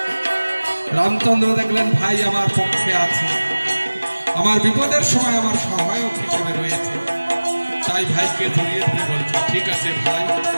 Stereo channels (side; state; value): both; inverted; correlation -1.00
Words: রামচন্দ্র দেখলেন ভাই আমার পক্ষে আছে, আমার বিপদের সময় আমার সহায়ক হিসেবে রয়েছে। তাই ভাইকে জড়িয়ে ধরে বলছে, ঠিক আছে ভাই,